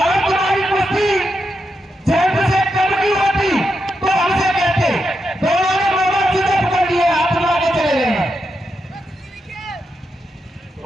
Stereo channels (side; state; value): both; normal; correlation 0.85